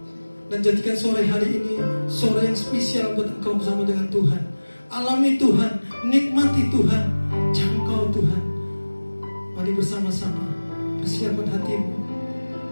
Dan jadikan sore hari ini sore yang spesial buat engkau bersama dengan Tuhan. Alami Tuhan, nikmati Tuhan, jangkau Tuhan. Mari bersama-sama persiapkan hatimu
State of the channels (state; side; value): inverted; both; correlation -1.00